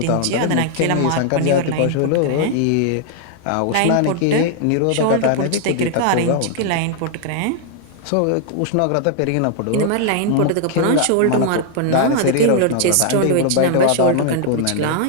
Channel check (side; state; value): both; different; correlation 0.00